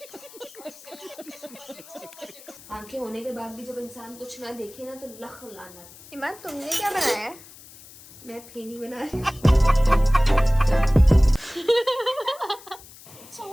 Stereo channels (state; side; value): noise; left; hiss, 20 dB below the sound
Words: आंखें होने के बाद भी जब इंसान कुछ ना देखे ना तो लख लानत। ईमान तुमने क्या बनाया है? मैं फेनी बना रही हूँ।